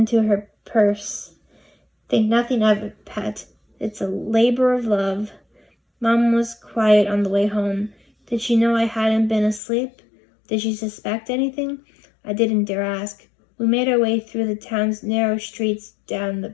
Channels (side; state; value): right; drops out; at 9.6 s